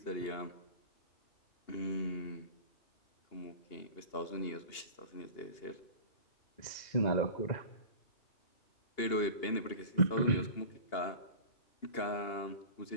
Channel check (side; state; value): right; late; 2.8 ms